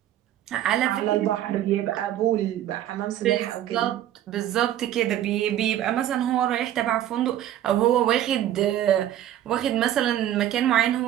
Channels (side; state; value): left; quieter; 12.0 dB